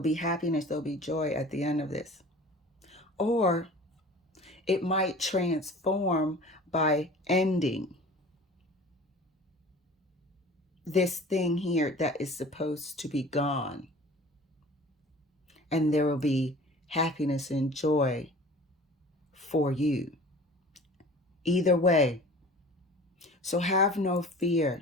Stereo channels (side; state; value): both; normal; correlation 0.43